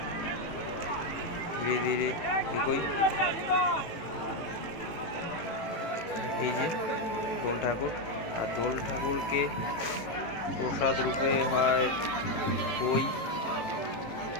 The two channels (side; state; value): right; late; 18 ms